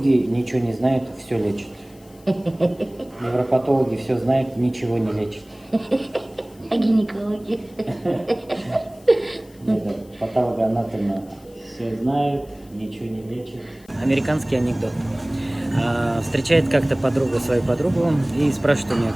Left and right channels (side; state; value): left; noise; hiss, 28 dB below the sound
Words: ничего не знают, все лечат. Невропатологи все знают, ничего не лечат. А гинекологи? Патологоанатомы все знают, ничего не лечат. Американский анекдот. Встречает как-то подруга свою подругу и спрашивает у нее,